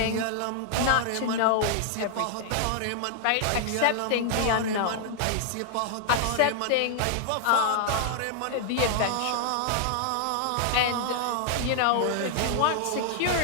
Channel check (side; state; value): both; different; correlation 0.00